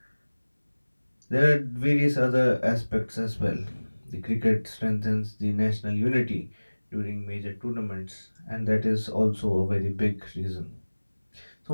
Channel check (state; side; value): inverted; both; correlation -1.00